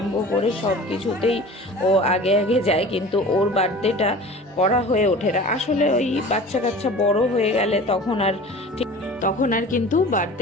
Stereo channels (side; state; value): both; normal; correlation 0.40